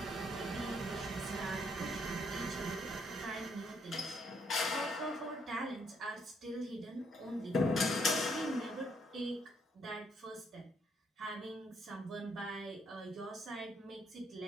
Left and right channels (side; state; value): both; normal; correlation 0.71